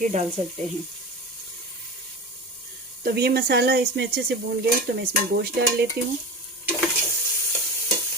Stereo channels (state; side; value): normal; both; correlation 0.27